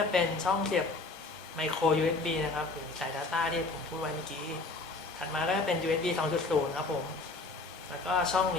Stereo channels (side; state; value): right; quieter; 3.6 dB